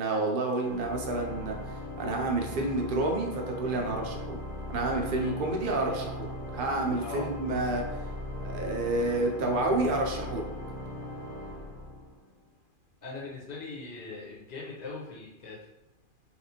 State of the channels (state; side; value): late; left; 2.4 ms